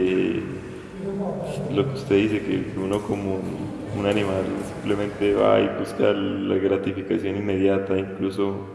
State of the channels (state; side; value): identical; both; correlation 1.00